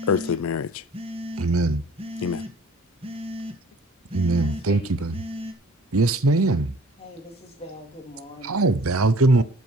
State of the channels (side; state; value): both; normal; correlation 0.51